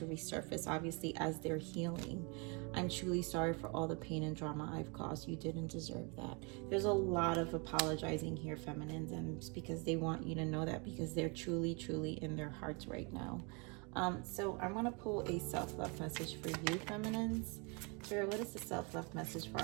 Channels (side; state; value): left; quieter; 32.1 dB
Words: resurface, obviously, as they're healing. I'm truly sorry for all the pain and drama I've caused. You didn't deserve that. There's a lot of apologizing here, feminines, and it's because they want you to know that, because they're truly, truly in their hearts right now. So I'm going to pull a self-love message for you, feminines. Spirit, what is the self-love message for